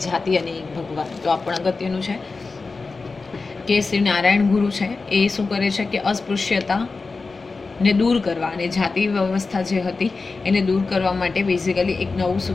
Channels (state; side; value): quieter; right; 4.1 dB